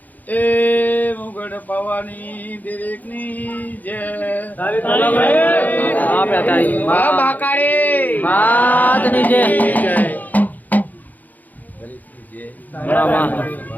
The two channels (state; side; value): late; right; 0.082 ms